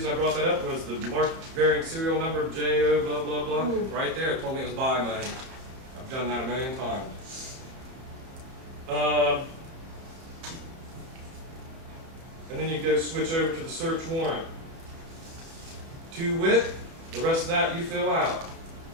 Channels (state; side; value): late; left; 31 ms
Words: I brought that up was the marked bearing serial number JO blah, blah, blah. Right there, it told me it was buy money. I've done that a million times. And then you go switch over to the search warrant. To wit, the rest of that you fill out.